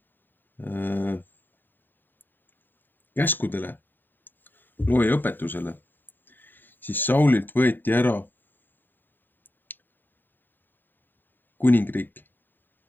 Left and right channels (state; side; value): late; right; 0.092 ms